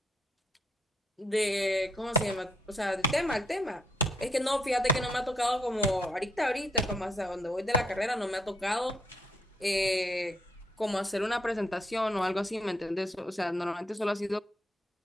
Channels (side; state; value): both; normal; correlation 0.74